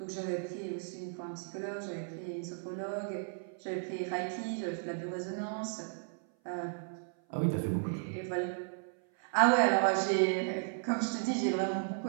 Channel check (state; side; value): silent; left; 55 dB below the other